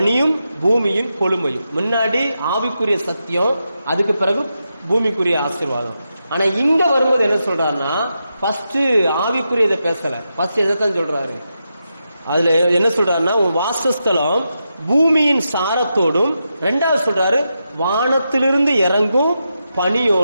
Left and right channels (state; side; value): inverted; both; correlation -0.87